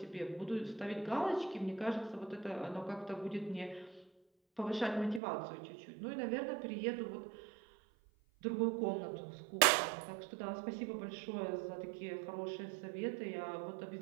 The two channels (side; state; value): left; drops out; at 5.2 s